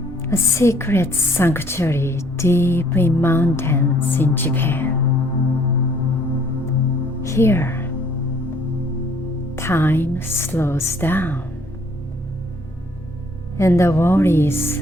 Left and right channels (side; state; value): both; normal; correlation 0.61